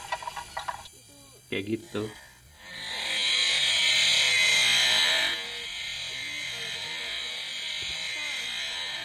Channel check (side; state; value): both; identical; correlation 1.00